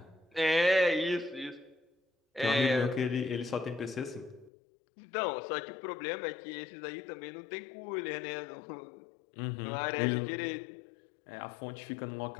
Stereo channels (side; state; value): right; drops out; at 4.5 s